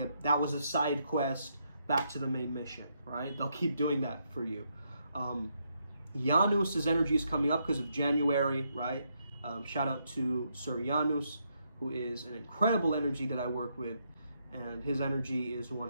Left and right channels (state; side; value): inverted; both; correlation -0.78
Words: that was a side quest, back to the main mission, right? They'll keep doing that for you. Janus's energy is coming up because of January, right? Shout out to Sir Janus, who is an incredible energy that I work with. And his energy is one